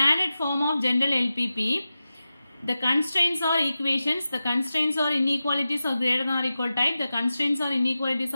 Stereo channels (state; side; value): inverted; both; correlation -0.93